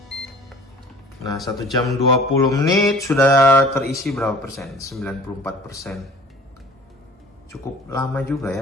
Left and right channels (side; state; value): both; normal; correlation 0.47